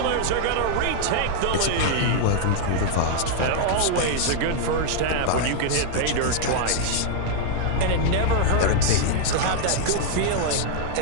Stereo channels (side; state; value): both; different; correlation -0.01